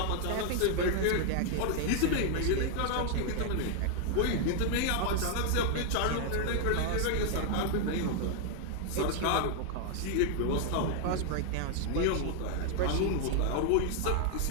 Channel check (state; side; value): different; both; correlation 0.00